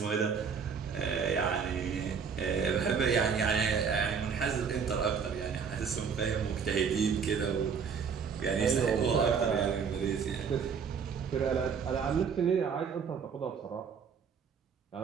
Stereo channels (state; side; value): quieter; left; 6.4 dB